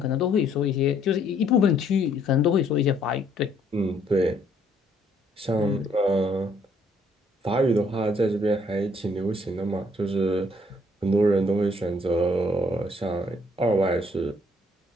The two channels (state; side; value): normal; both; correlation 0.65